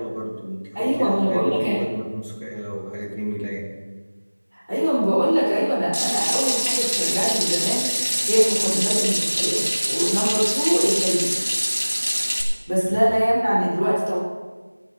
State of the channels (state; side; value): inverted; both; correlation -1.00